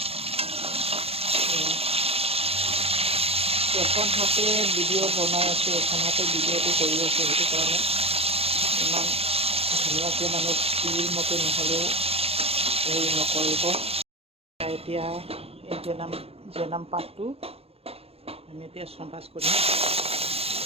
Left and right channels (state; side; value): late; left; 0.28 ms